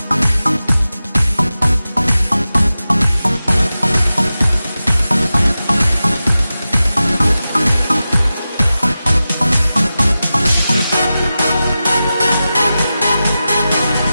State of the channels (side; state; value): both; inverted; correlation -0.94